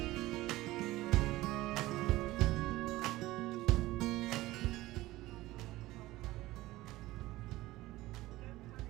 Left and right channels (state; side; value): quieter; left; 17.7 dB